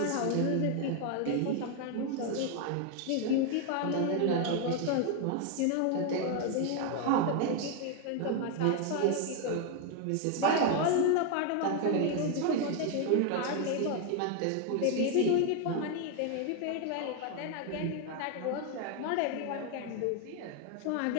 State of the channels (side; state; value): both; different; correlation 0.01